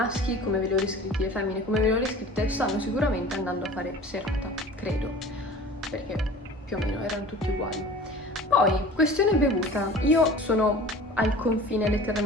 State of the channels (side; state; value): both; normal; correlation 0.41